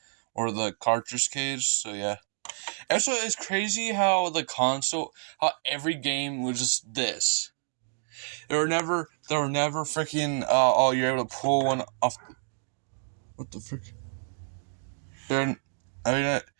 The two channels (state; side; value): silent; left; digital silence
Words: or the cartridge case. So yeah. Also, it's crazy how how every game was just this. There were never freaking, oh, you're able to pull one off. What the frick? Alright,